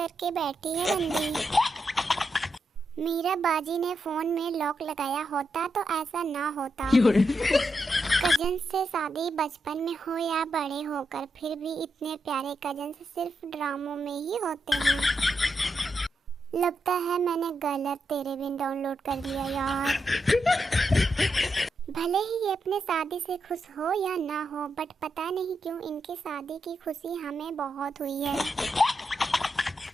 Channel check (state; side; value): normal; both; correlation 0.84